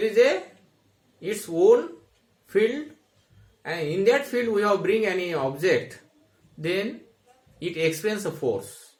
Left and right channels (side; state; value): both; identical; correlation 1.00